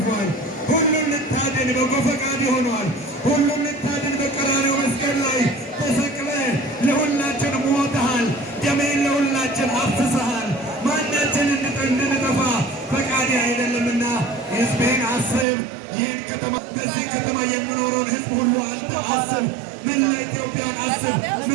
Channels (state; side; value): drops out; left; at 15.5 s